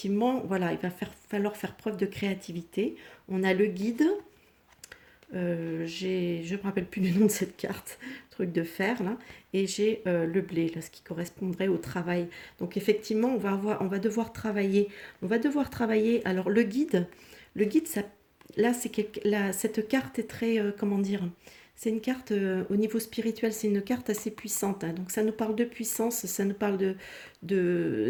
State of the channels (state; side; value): identical; both; correlation 1.00